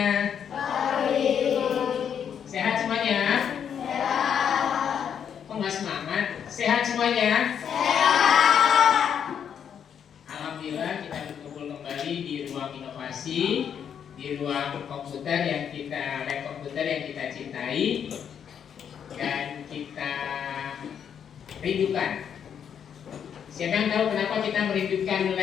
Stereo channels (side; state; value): right; quieter; 8.2 dB